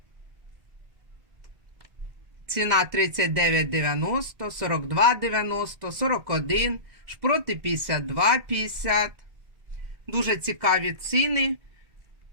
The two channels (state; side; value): late; left; 2.1 ms